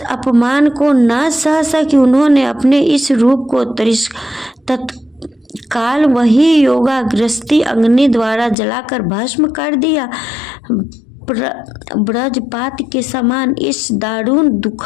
अपमान को न सह सकी। उन्होंने अपने इस रूप को तत्काल वही योगाग्रस्ती अग्नि द्वारा जलाकर भस्म कर दिया। ब्रजपात के समान इस दारुण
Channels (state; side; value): drops out; right; at 8.6 s